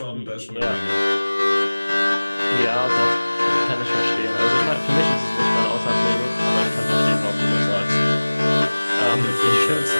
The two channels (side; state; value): both; inverted; correlation -1.00